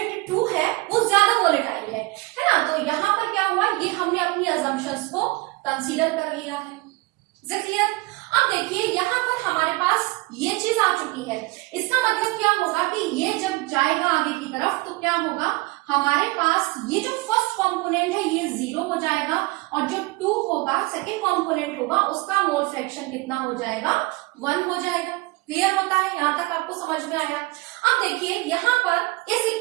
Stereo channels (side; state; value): left; quieter; 22.6 dB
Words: 2 है वो ज्यादा वोलेटाइल है ना। तो यहाँ पर क्या हुआ, ये हमने अपनी अजम्पशंस को कंसीडर कर लिया है। क्लियर। अब देखिए यहाँ पर हमारे पास ये चीज आ चुकी है, इसका मतलब क्या होगा कि ये जब जाएगा आगे की तरफ तो क्या होगा, हमारे पास ये जो फर्स्ट कंपोनेंट है ये 0 हो जाएगा और जो 2 होगा, सेकंड कंपोनेंट होगा, उसका मोल फ्रैक्शन कितना हो जाएगा, 1 हो जाएगा। क्लियर होता है, यहां तक आपको समझ में आया। अब देखिए यहाँ पर इस